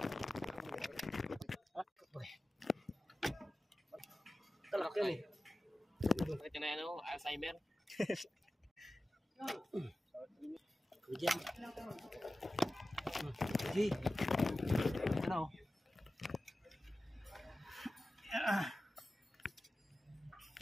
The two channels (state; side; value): normal; both; correlation 0.95